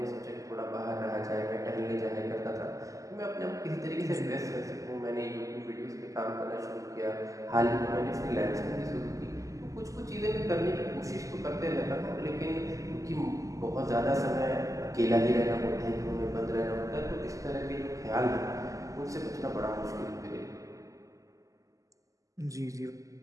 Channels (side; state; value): left; late; 0.16 ms